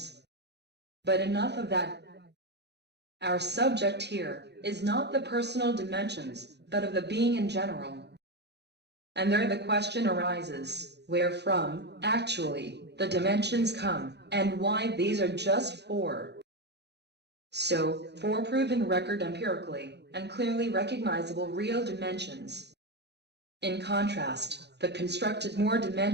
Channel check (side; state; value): left; late; 0.49 ms